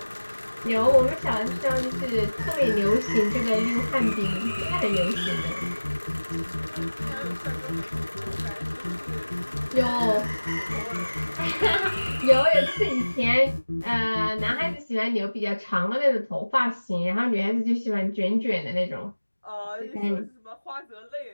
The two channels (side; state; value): both; inverted; correlation -1.00